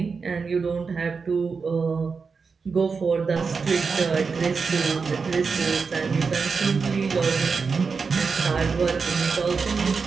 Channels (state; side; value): quieter; left; 5.1 dB